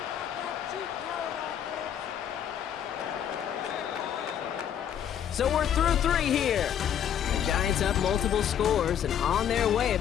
So we're through 3 here. The Giants up multiple scores and on their way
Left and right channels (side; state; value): right; quieter; 9.3 dB